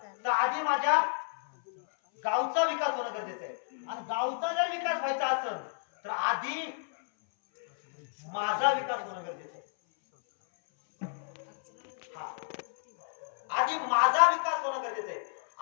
तर आधी माझ्या गावचा विकास होणं गरजेचं आहे. आणि गावचा जर विकास व्हायचा असेल तर आधी माझा विकास होणं गरजेचं आहे. हा आधी माझा विकास होणं गरजेचं आहे.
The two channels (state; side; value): silent; right; 57 dB below the other